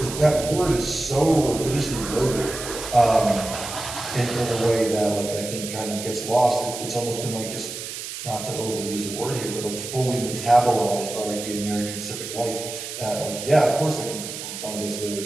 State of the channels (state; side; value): noise; right; hiss, 8 dB below the sound